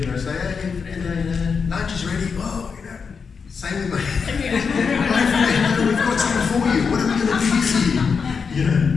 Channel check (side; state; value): right; quieter; 5.7 dB